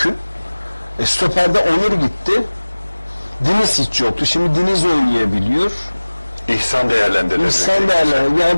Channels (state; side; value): inverted; both; correlation -1.00